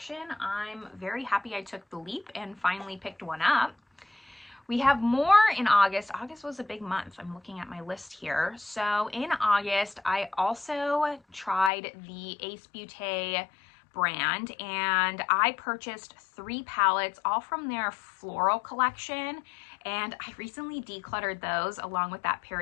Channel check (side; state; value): right; drops out; at 11.7 s